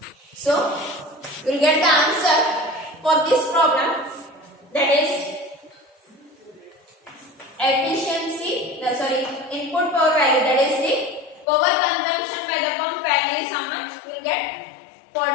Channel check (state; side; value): drops out; right; at 11.5 s